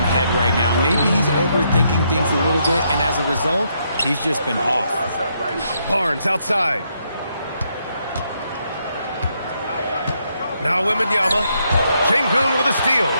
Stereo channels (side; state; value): both; inverted; correlation -0.76